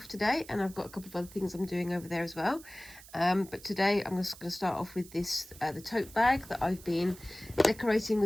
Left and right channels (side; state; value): right; noise; hiss, 19 dB below the sound